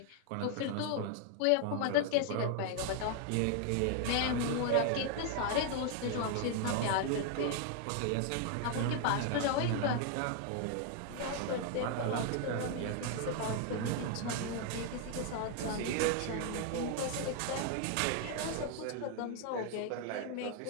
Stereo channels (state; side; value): different; both; correlation 0.00